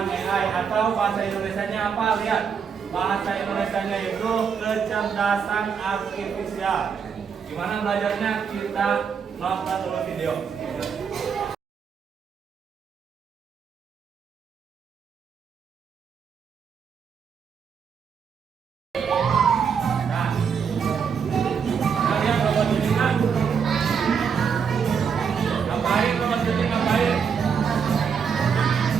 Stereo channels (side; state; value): left; quieter; 6.6 dB